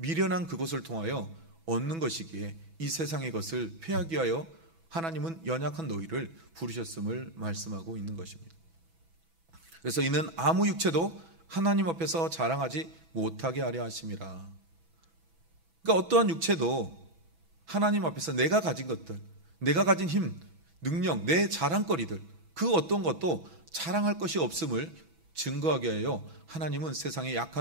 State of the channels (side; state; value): left; late; 6.1 ms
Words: 그것을 통하여 얻는 것이기에 이 세상의 것을 폐하기 위하여 하나님은 연약한 너희를 부르셨음을 말씀하고 있는 것입니다. 그래서 이는 아무 육체도 하나님 앞에서 자랑하지 못하게 하려 하심이라. 그러니까 어떠한 육체도 하나님 앞에서 내가 가진 것들, 내가 가진 힘, 능력, 내 자랑거리들 그 어떤 것도 자랑할 것이 없음을 증거하게 하여 하나님은 세상에